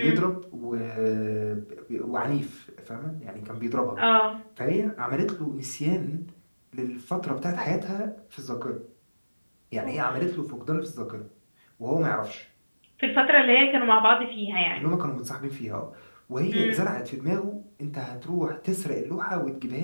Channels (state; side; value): inverted; both; correlation -1.00